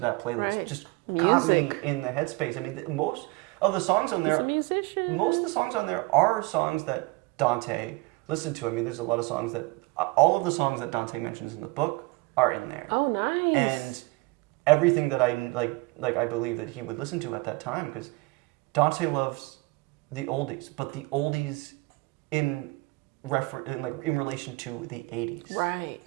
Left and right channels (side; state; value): left; quieter; 24.6 dB